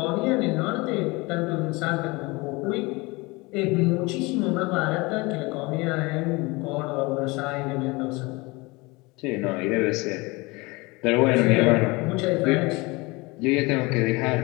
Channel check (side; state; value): right; quieter; 24.7 dB